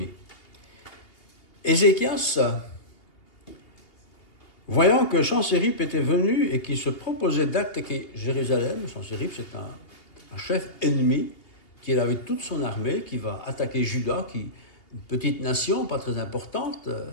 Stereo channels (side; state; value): right; late; 2.8 ms